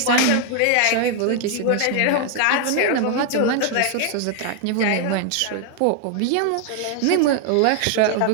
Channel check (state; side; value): different; both; correlation 0.00